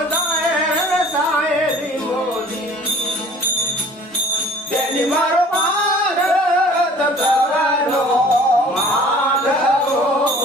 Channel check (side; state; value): both; normal; correlation 0.50